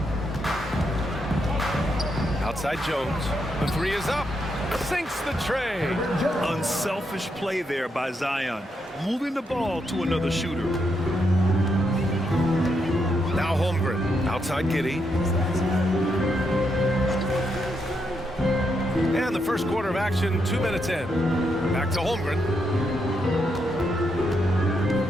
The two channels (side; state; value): both; normal; correlation 0.80